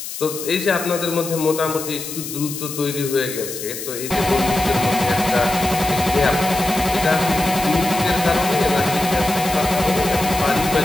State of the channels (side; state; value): left; noise; hiss, 8 dB below the sound